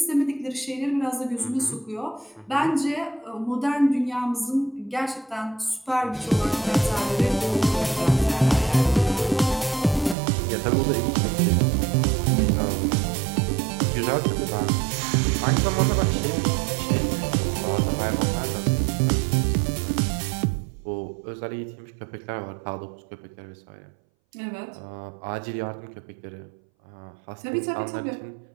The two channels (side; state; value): left; drops out; at 10.2 s